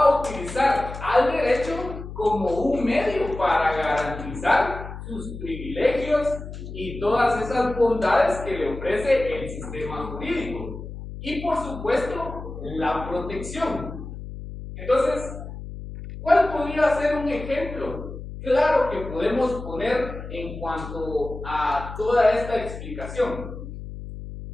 utilizar al derecho como un medio para garantizar sus privilegios y todas esas bondades que le ofrece el sistema jurídico. Y por supuesto, la protección. Entonces, ¿cuál podría ser un ejemplo claro que podemos poner en cuanto a toda esta explicación?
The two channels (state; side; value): noise; left; hum, 10 dB below the sound